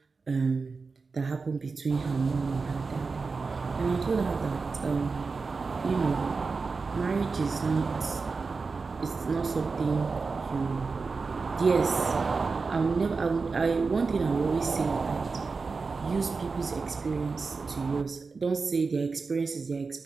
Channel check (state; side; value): quieter; left; 4.5 dB